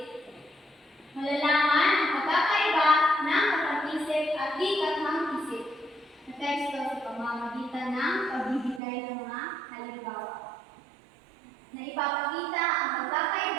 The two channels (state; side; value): drops out; left; at 8.8 s